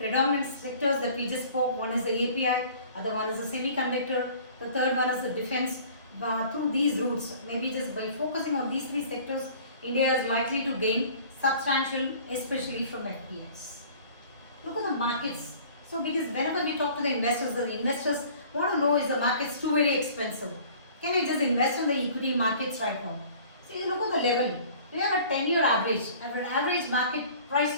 sectors that we just spoke. One is the API, other one is the semiconductor, the third one is the defense. Through these routes, maybe just by focusing on these three sectors, India is likely to gain substantial, especially from FPIs. Look at the markets. So because whenever we talk to the investors want to know, is the markets too very expensive? Can I just invest in the equity markets right now? See, look at the level. We have a 10-year average. Our average market price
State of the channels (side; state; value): both; inverted; correlation -0.49